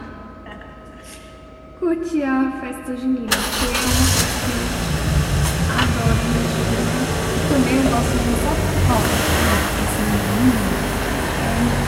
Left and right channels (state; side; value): identical; both; correlation 1.00